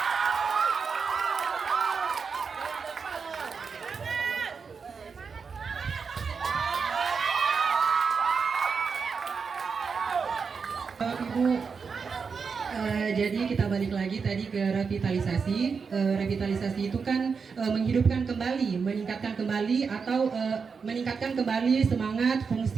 Ibu, jadi kita balik lagi tadi ke revitalisasi. Revitalisasi itu kan menghidupkan kembali, meningkatkan kembali atau meningkatkan kembali semangat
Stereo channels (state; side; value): quieter; left; 5.5 dB